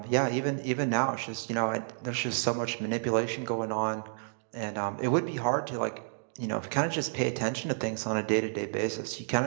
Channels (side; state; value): left; silent; digital silence